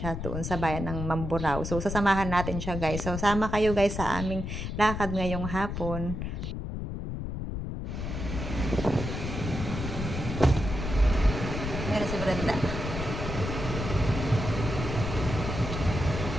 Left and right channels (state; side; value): noise; left; rumble, 5 dB below the sound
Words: doon sa bayan ng Mamburao. So, sasamahan natin siya guys. So, sama kayo guys sa aming lakad ngayong hapon. Meron si Brenda.